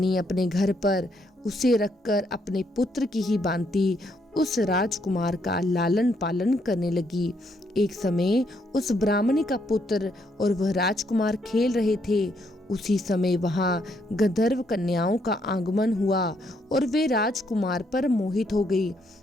अपने घर पर उसे रखकर अपने पुत्र की ही भांति उस राजकुमार का लालन पालन करने लगी। एक समय उस ब्राह्मणी का पुत्र और वह राजकुमार खेल रहे थे। उसी समय वहां गंधर्व कन्याओं का आगमन हुआ और वे राजकुमार पर मोहित हो गई।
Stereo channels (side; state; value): both; normal; correlation 0.74